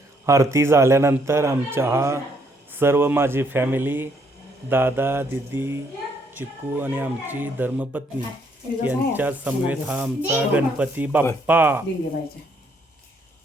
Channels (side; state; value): both; normal; correlation 0.70